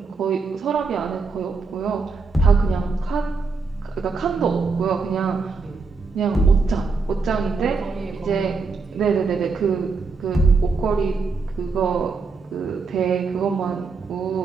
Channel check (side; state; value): left; quieter; 4.4 dB